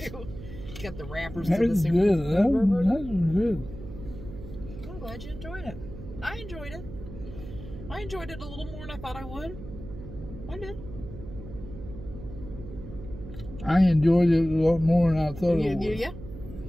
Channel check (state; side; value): noise; right; hum, 12 dB below the sound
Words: Got the wrappers to That's the good. That was good. I'm glad you enjoyed it. I enjoyed it. I enjoyed it a little more than I thought I would. I did. I enjoyed it a lot more than I thought I would. Yeah.